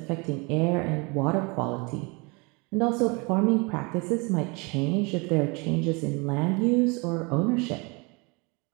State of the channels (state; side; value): quieter; left; 28.8 dB